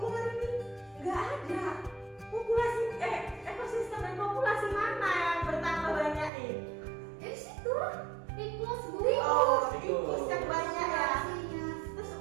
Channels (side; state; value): left; drops out; at 6.3 s